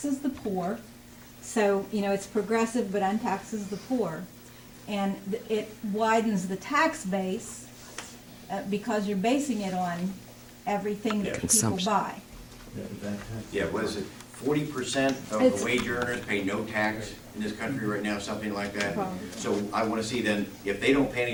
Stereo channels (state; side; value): identical; both; correlation 1.00